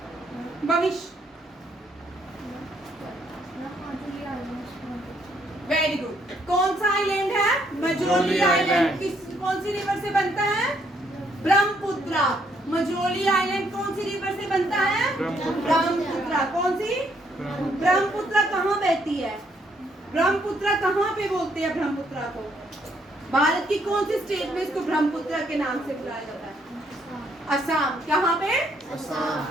भविष्य। Very good. कौन सा आइलैंड है? मजोली आइलैंड। किस कौन सी रिवर से बनता है? ब्रह्मपुत्रा। मजोली आइलैंड कौन सी रिवर से बनता है? ब्रह्मपुत्रा। कौन सी? ब्रह्मपुत्रा कहाँ बहती है? ब्रह्मपुत्रा कहाँ पे बोलते हैं ब्रह्मपुत्रा को? भारत की कौन सी स्टेट में इसको ब्रह्मपुत्रा के नाम से बुलाया जाता है? असम। कहाँ पे?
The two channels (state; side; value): normal; both; correlation 0.71